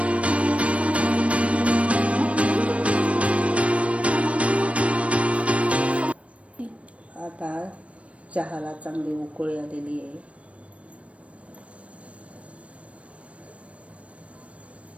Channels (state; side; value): late; left; 0.063 ms